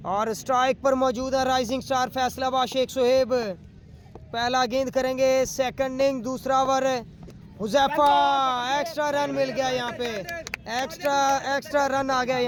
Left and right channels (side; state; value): both; identical; correlation 1.00